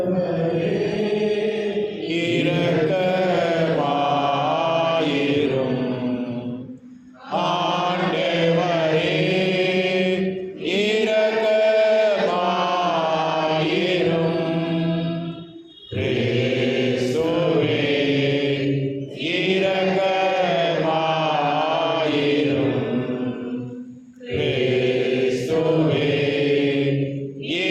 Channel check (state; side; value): identical; both; correlation 1.00